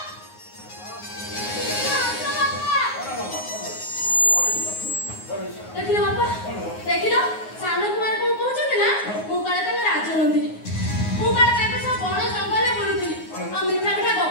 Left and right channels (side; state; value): right; late; 9.5 ms